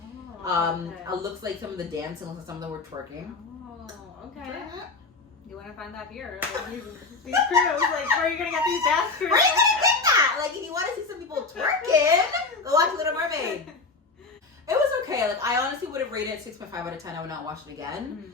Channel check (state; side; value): quieter; right; 4.0 dB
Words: It looks like some of the dancing looks like some of them were twerking. Oh, okay. You want to find that here? Like, these crews, like, where are you gonna get these dance crews? Where are you gonna get that? Like, if you want to see some people twerking, go watch Little Mermaid. It was okay. Like, I honestly would have rated it 6.5 out of 10. I would not watch it again.